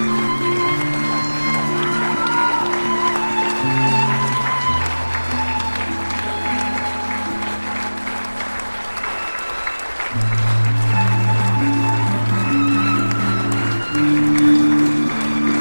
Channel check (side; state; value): both; inverted; correlation -1.00